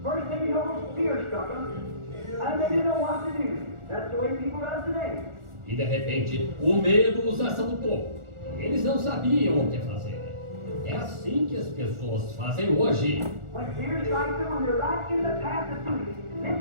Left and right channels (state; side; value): late; left; 1.4 ms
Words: first thing you know, fear struck them, and they didn't know what to do. That's the way people are today. E de repente, o medo os assaltou. E eles não sabiam o que fazer. É assim que as pessoas fazem hoje. When fear strikes them, when they're right in the path of duty,